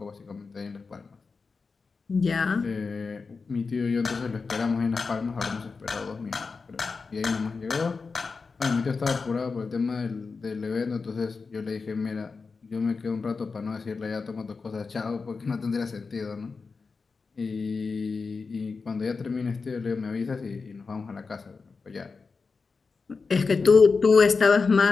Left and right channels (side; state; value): right; quieter; 4.6 dB